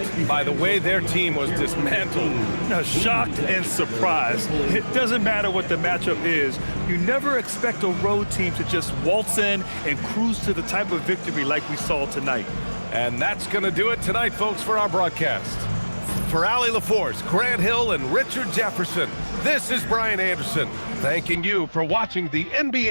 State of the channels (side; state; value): both; inverted; correlation -1.00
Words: by the way their team was dismantled. Now, shocked and surprised. It doesn't matter what the matchup is. You never expect a road team to just waltz in and cruise to the type of victory like we saw tonight. And that's going to do it tonight, folks, for our broadcast. For Allie LaForce, Grant Hill, and Richard Jefferson, this is Brian Anderson, thanking you for watching the